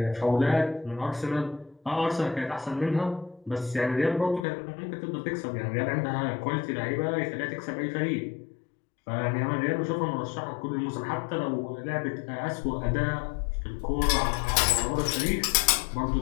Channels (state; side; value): drops out; right; at 4.5 s